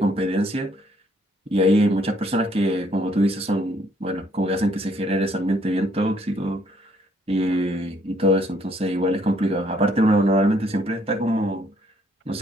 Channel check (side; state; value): both; normal; correlation 0.67